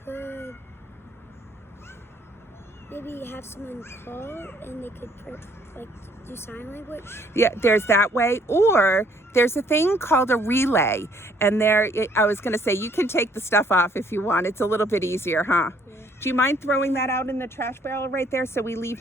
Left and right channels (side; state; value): both; normal; correlation 0.63